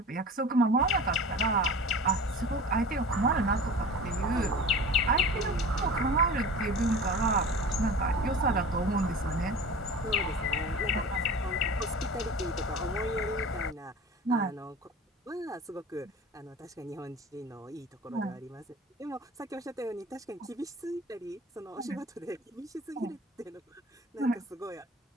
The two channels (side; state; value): both; normal; correlation 0.37